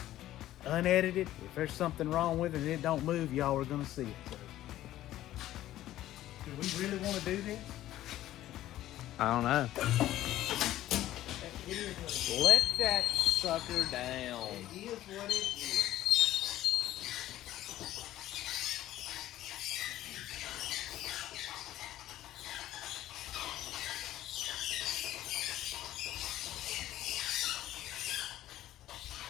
unedited. If there's something wrong with it and it don't move, y'all are going to see it. So, do we really want to do this? I don't know. Let that sucker down. It is what it is.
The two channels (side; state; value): right; quieter; 14.0 dB